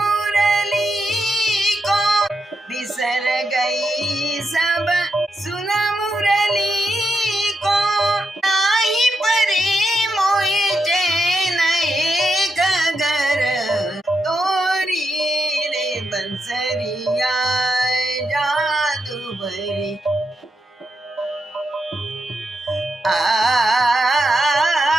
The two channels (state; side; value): normal; both; correlation 0.84